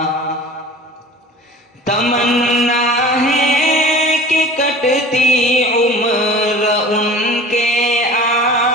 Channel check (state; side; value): normal; both; correlation 0.41